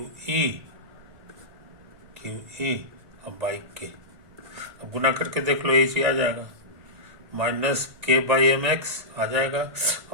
ई और बाई के। अब गुना करके देख लो, ये चीज आ जाएगा, माइनस के बाई एम एक्स आ जाएगा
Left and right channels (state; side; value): late; left; 1.8 ms